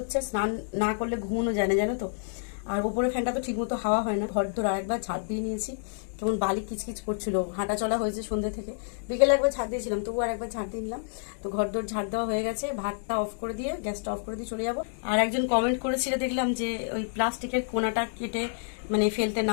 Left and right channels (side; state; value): right; silent; digital silence